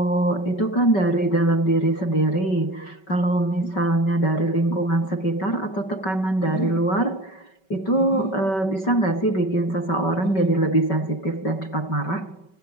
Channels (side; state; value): right; late; 5.3 ms